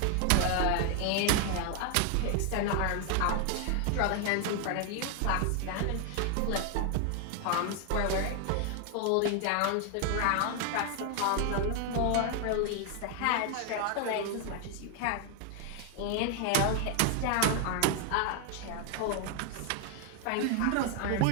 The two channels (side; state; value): both; different; correlation 0.00